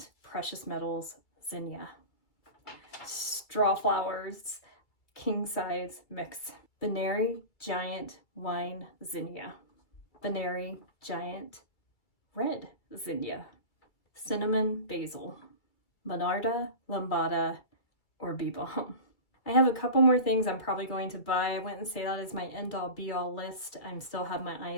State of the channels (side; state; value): right; late; 2.1 ms